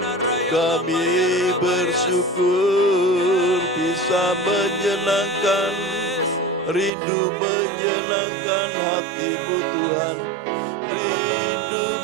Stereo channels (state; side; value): drops out; left; at 6.9 s